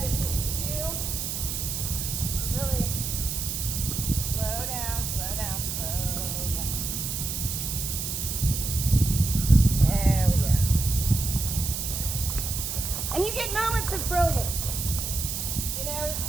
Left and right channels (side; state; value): right; noise; hiss, 3 dB below the sound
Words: is the cue. Really slow down, slow down, slow down. There we go. And you get moments of brilliance. You know, it